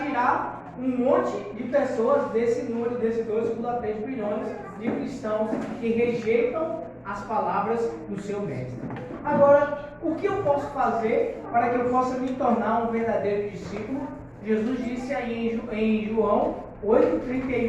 um monte de pessoas desse número, desses 2,3 bilhões de cristãos que rejeitam as palavras do seu mestre. Agora, o que eu posso fazer para que eu possa me tornar um verdadeiro discípulo? Jesus disse aí em João 8,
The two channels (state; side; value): identical; both; correlation 1.00